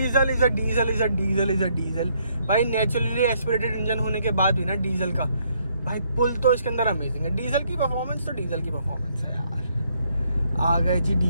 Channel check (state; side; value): inverted; both; correlation -0.70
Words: इज अ डीजल भाई। नेचुरली एस्पिरेटेड इंजन होने के बाद भी ना डीजल का भाई पुल तो इसके अंदर अमेजिंग है। डीजल की परफॉर्मेंस तो डीजल की परफॉर्मेंस है यार। आ गए जी